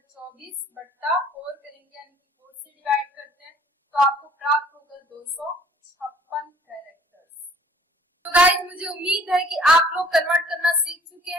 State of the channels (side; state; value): both; normal; correlation 0.55